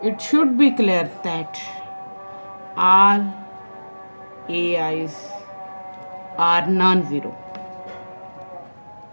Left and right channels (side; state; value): both; inverted; correlation -1.00